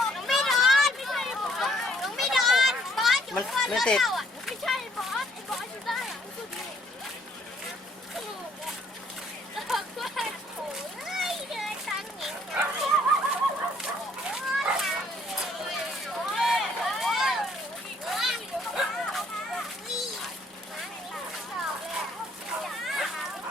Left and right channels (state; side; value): normal; both; correlation 0.64